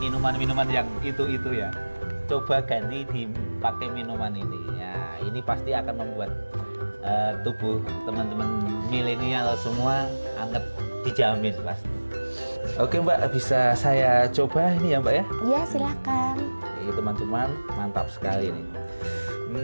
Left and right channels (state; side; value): inverted; both; correlation -1.00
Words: yang itu ya. Coba ganti dipakai minuman ini. Ya, ini pasti akan membuat tubuh teman-teman milenial semua anget, dijamin pasti. Oke Mbak, bisa saya coba ini ya Mbak ya? Iya silakan. Ini teman-teman, mantap sekali nih.